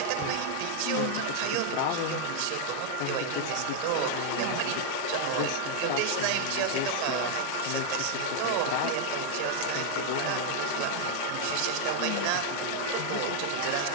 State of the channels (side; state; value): both; different; correlation 0.00